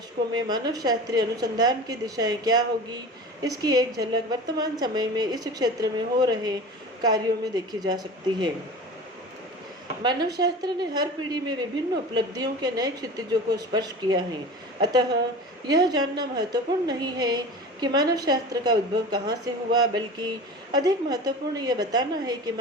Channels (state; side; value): normal; both; correlation 0.35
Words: में मानवशास्त्रीय अनुसंधान की दिशाएं क्या होगी, इसकी एक झलक वर्तमान समय में इस क्षेत्र में हो रहे कार्यों में देखी जा सकती है। मानवशास्त्र ने हर पीढ़ी में विभिन्न उपलब्धियों के नए क्षितिजों को स्पर्श किया है। अतः यह जानना महत्वपूर्ण नहीं है कि मानवशास्त्र का उद्भव कहाँ से हुआ, बल्कि अधिक महत्वपूर्ण यह बताना है कि